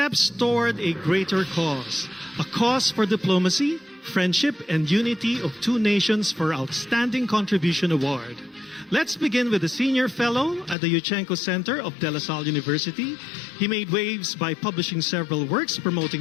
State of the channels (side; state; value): right; drops out; at 10.8 s